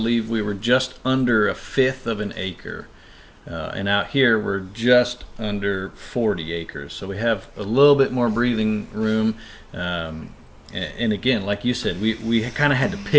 we were just under 1/5 of an acre. And out here, we're just under 40 acres. So we have a little bit more breathing room. And again, like you said, we kind of had to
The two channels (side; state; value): both; identical; correlation 1.00